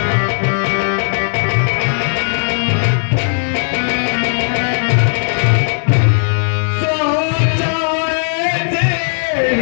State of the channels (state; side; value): silent; right; digital silence